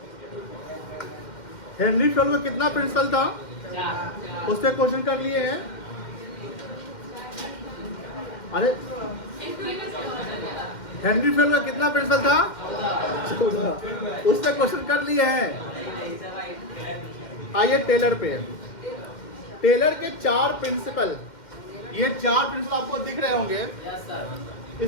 हेनरी फेल्ड का कितना प्रिंसिपल था? उससे क्वेश्चन कर लिए हैं। अरे हेनरी फेल्ड का कितना प्रिंसिपल था? 14। उससे क्वेश्चन कर लिए हैं। आइए टेलर पे। टेलर के 4 प्रिंसिपल, ये 4 प्रिंसिपल आपको दिख रहे होंगे।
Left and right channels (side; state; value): right; late; 2.1 ms